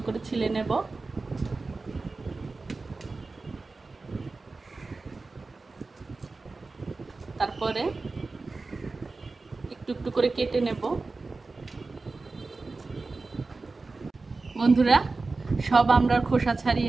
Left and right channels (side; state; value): left; quieter; 3.7 dB